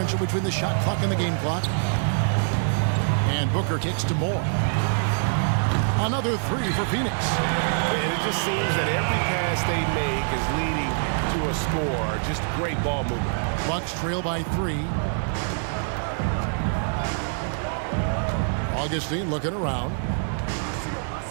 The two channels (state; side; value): silent; left; digital silence